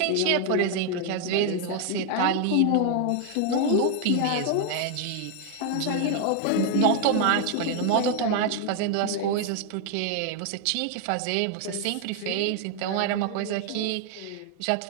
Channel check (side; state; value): both; different; correlation 0.00